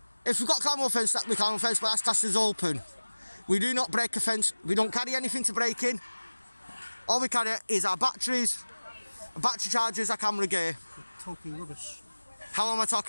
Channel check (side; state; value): both; inverted; correlation -1.00